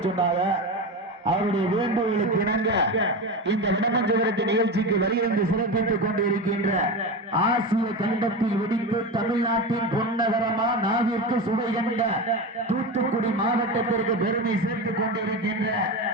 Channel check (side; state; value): both; normal; correlation 0.22